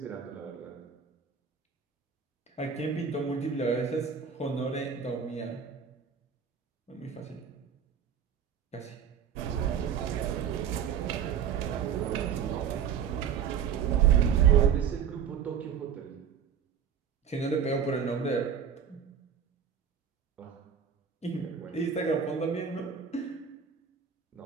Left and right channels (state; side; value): quieter; left; 7.5 dB